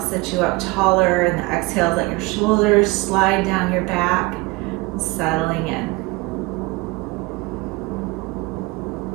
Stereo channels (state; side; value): quieter; left; 23.6 dB